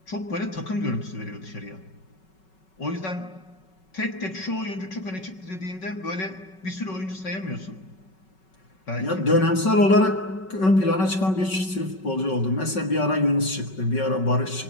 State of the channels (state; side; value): late; right; 5.3 ms